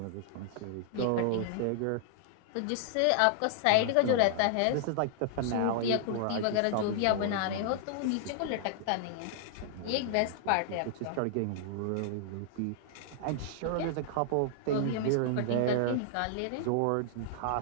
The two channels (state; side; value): different; both; correlation -0.01